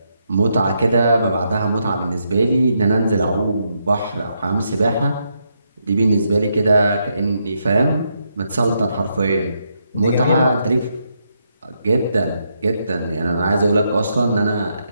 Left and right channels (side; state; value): both; inverted; correlation -0.79